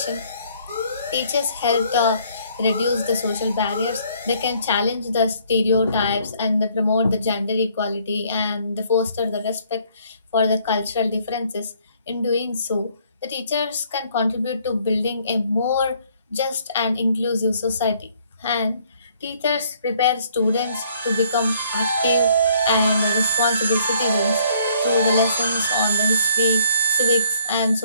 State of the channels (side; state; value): both; inverted; correlation -0.63